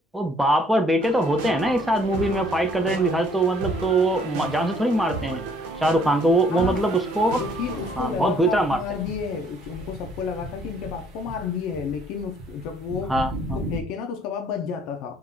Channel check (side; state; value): both; normal; correlation 0.62